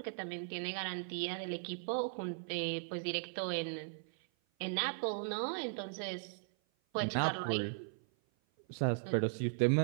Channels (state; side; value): silent; left; 53 dB below the other